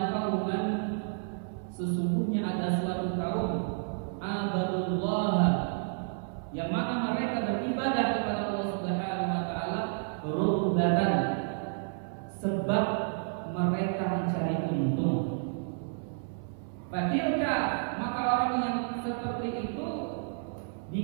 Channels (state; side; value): silent; left; 57 dB below the other